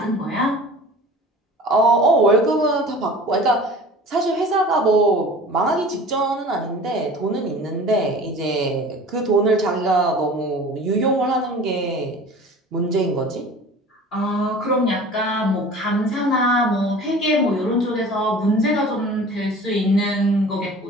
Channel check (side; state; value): both; normal; correlation 0.42